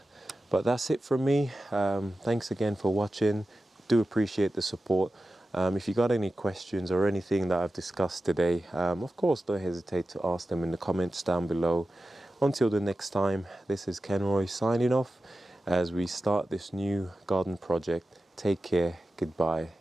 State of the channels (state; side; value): normal; both; correlation 0.93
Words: But that's it from me. Thanks again for watching. Do appreciate the support. If you got any questions or anything that I've discussed today, of course, don't hesitate to ask them in the comments down below. Until the next time, this is Kenroy signing off as we start this new garden project. Take care, goodbye,